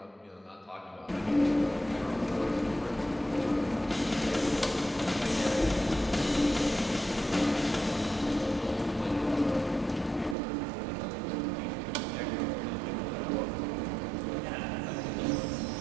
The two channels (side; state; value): left; drops out; at 10.4 s